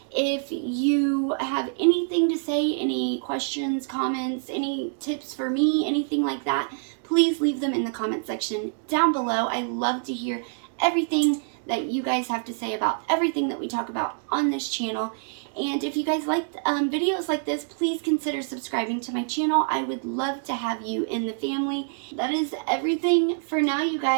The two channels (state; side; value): silent; left; digital silence